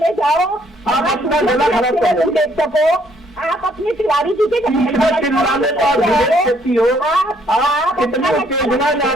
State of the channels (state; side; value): normal; both; correlation 0.67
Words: जाओ, आप अपना गला खराब कर लो। देख सको, आप अपने तिवारी जी के चिल्लाने को आप विवेक देती हो, आप कितने उत्तेजना